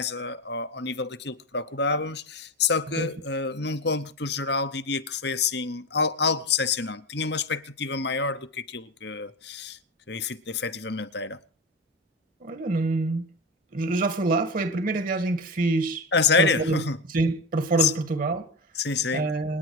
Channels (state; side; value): normal; both; correlation 0.20